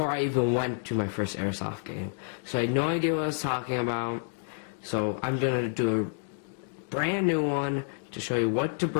I even went to my first airsoft game. So I had no idea what I was talking about, so I'm gonna do a brand new one to show you what to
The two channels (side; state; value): right; silent; digital silence